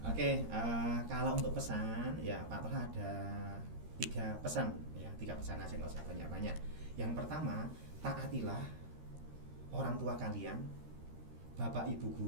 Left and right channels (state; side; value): late; left; 13 ms